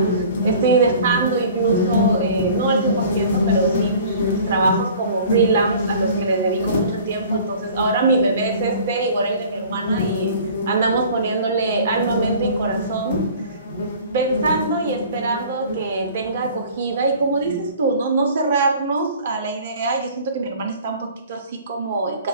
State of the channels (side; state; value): both; inverted; correlation -0.47